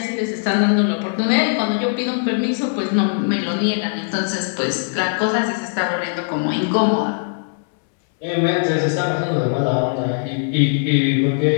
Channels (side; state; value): right; silent; 66 dB below the other